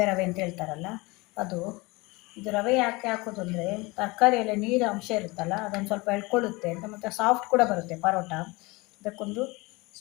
ರವೆ ಅಂತ ಹೇಳ್ತಾರಲ್ಲ ಅದು. ಇದು ರವೆ ಯಾಕೆ ಹಾಕೋದು ಅಂದರೆ, ತರಕಾರಿಯಲ್ಲಿ ನೀರು ಅಂಶ ಇರುತ್ತಲ್ಲ, ಅದನ್ನು ಸ್ವಲ್ಪ ಎಳ್ಕೊಳ್ಳುತ್ತೆ ಅಂತ, ಮತ್ತು ಸಾಫ್ಟ್ ಕೂಡ ಬರುತ್ತೆ ಪರೋಟ. ಇದಕ್ಕೊಂದು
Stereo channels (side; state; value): right; quieter; 24.0 dB